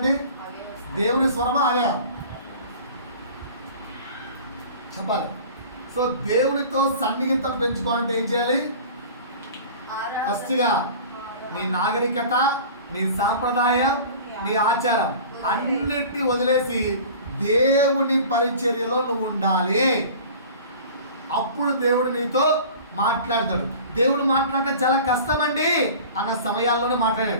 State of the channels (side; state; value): both; inverted; correlation -0.41